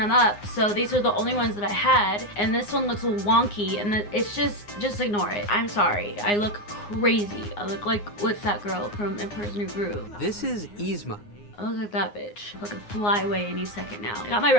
up. So these are the only ones that I had, and this one looks wonky, and it's just ignore it. I'm sorry. I look crazy. I look like, what's that girl from Emperor's New Groove? This is Yzma. Oh, look at that bitch. Looking fly away any second now. I got my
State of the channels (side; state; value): right; late; 9.7 ms